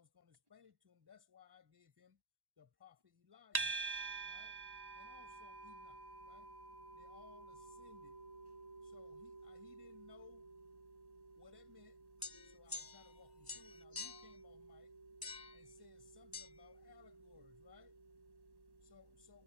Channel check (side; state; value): left; late; 1.1 ms